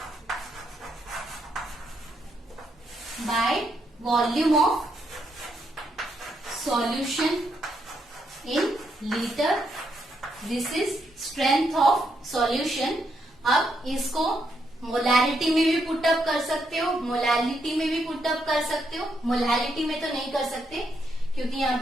bye volume of solution in litre. This is strength of solution. अब इसको मोलैरिटी में भी पुटअप कर सकते हो, मोलैलिटी में भी पुटअप कर सकते हो। मोलैलिटी में तो नहीं कर सकते क्योंकि यहाँ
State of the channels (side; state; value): both; normal; correlation 0.78